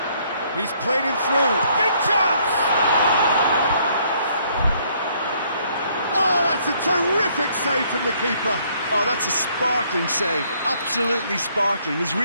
He's played him through. Big chance! Oh, that's a terrific save from the keeper. Oh, that's a sparkling save. Absolutely sparkling. His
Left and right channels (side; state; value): both; inverted; correlation -0.66